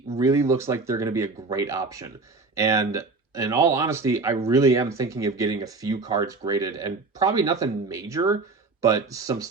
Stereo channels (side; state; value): left; quieter; 3.8 dB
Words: really looks like they're going to be a great option. And in all honesty, I really am thinking of getting a few cards graded, and probably nothing major, but some